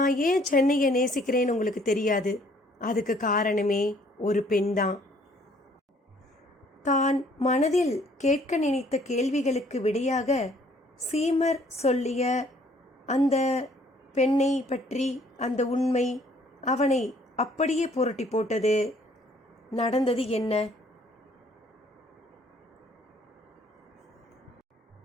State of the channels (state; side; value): normal; both; correlation 0.61